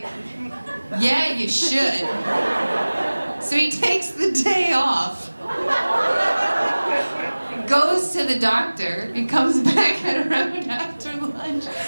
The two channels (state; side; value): inverted; both; correlation -1.00